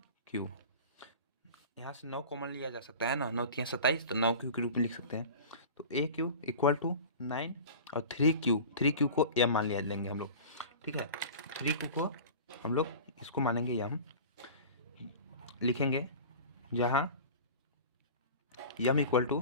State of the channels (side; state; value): both; inverted; correlation -0.37